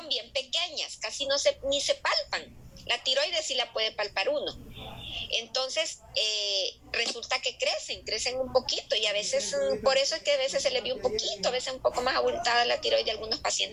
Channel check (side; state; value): both; identical; correlation 1.00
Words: bien pequeñas, casi ni se palpan. La tiroides sí la puede palpar uno. Entonces, resulta que crecen un poquito, y a veces, por eso es que a veces se les ve un poquito, a veces un poco más abultada la tiroides de algunos